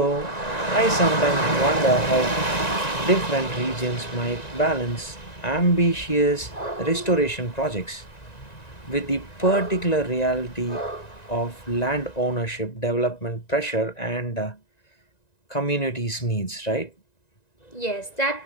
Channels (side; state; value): right; late; 1.9 ms